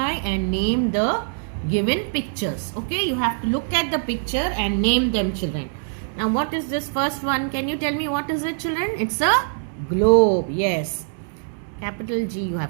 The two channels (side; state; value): left; silent; digital silence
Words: and name the given pictures. Okay, you have to look at the picture and name them, children. Now what is this first one? Can you tell me what is it, children? It's a globe. Yes. Capital G you